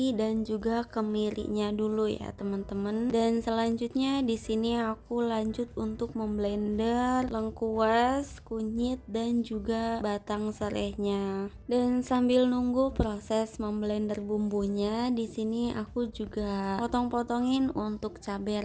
dan juga kemirinya dulu ya teman-teman. Dan selanjutnya di sini aku lanjut untuk memblender lengkuas, kunyit dan juga batang serehnya. Dan sambil nunggu proses memblender bumbunya, di sini aku juga potong-potongin untuk cabai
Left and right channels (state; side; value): identical; both; correlation 1.00